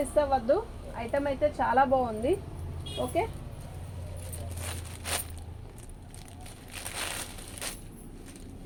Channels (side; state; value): both; identical; correlation 1.00